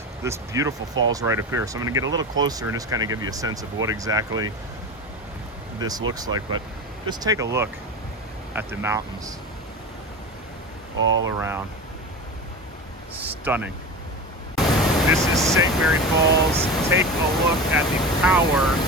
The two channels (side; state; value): both; normal; correlation 0.28